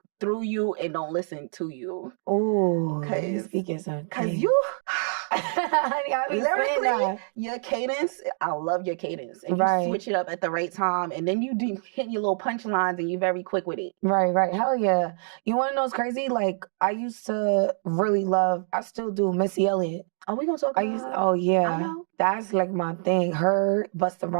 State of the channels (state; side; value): silent; left; 61 dB below the other